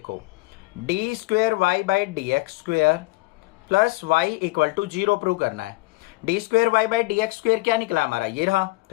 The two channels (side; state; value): right; quieter; 22.6 dB